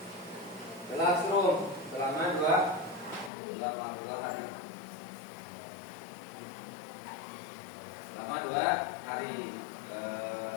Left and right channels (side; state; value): right; drops out; at 3.3 s